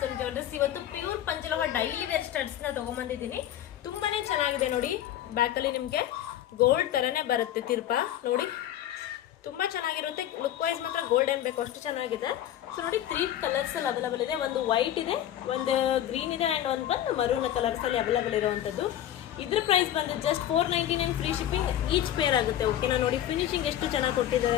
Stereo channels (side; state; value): right; quieter; 11.8 dB